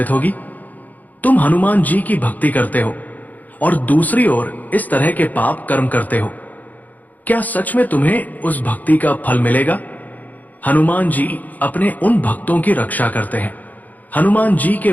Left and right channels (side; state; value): right; late; 0.081 ms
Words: होगी? तुम हनुमान जी की भक्ति करते हो और दूसरी ओर इस तरह के पाप कर्म करते हो। क्या सच में तुम्हें उस भक्ति का फल मिलेगा? हनुमान जी अपने उन भक्तों की रक्षा करते हैं। हनुमान जी के